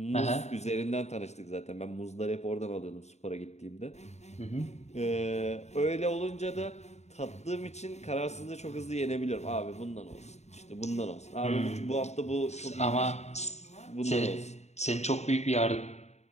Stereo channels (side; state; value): right; late; 0.32 ms